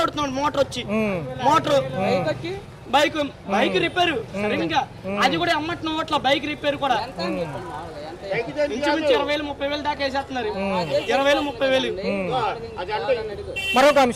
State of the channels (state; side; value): identical; both; correlation 1.00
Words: అడుగుతున్నాడు. మోటార్ బైక్ రిపేర్ సరిగ్గా అది కూడా అమ్మట్నం అట్లా. బైక్ రిపేర్ కూడా ఇంచుమించు 20,000-30,000 దాకా వేసేస్తున్నారు. 20,000-30,000. మరొక